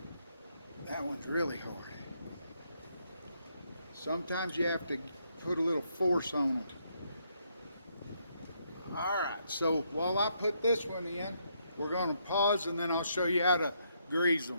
That one's really hard. Sometimes you have to put a little force on them. Alright, so while I put this one in, we're going to pause and then I'll show you how to grease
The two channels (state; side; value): inverted; both; correlation -0.75